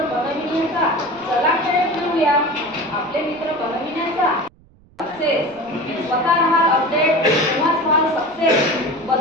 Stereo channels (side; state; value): right; noise; rumble, 28 dB below the sound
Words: बनविण्याचा चला खेळ खेळूया, आपले मित्र बनविण्याचा सक्सेस। स्वतः राहाल अपडेट तेव्हाच व्हाल सक्सेस।